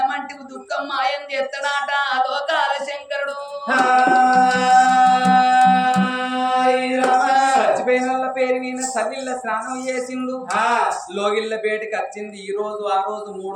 మంటి దుఃఖం మాయం చేస్తాడాట లోకాల శంకరుడు. చచ్చిపోయిన వాళ్ళ పేరు మీద సల్లిళ్ళ స్నానం చేసిండు, లోగిళ్ళ బేటికి వచ్చింది. ఈ రోజు ఆ రోజు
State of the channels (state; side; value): identical; both; correlation 1.00